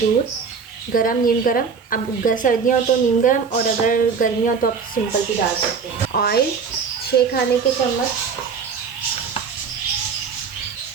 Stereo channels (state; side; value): quieter; left; 5.8 dB